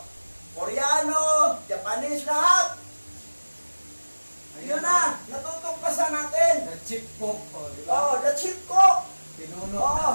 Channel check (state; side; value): inverted; both; correlation -1.00